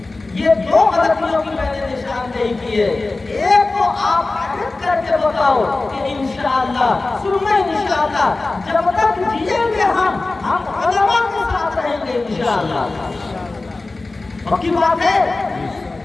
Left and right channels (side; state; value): right; quieter; 3.3 dB